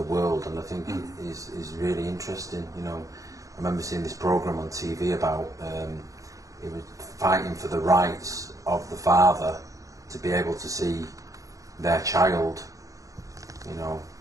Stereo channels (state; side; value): late; left; 0.16 ms